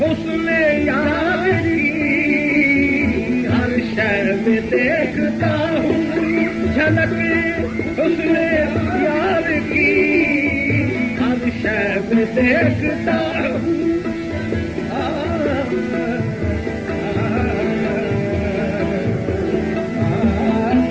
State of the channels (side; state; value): both; identical; correlation 1.00